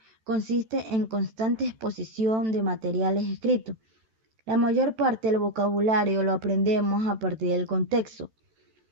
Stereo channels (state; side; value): late; left; 13 ms